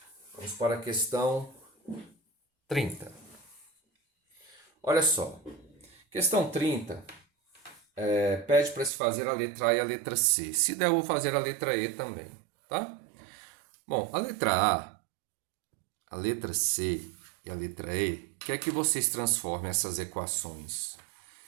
Vamos para a questão 30. Olha só. Questão 30 pede para se fazer a letra A e a letra C. Se der, eu vou fazer a letra E também. Tá? Bom, a letra A, a letra C e a letra E, quer que vocês transformem essas equações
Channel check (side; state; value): left; drops out; at 8.9 s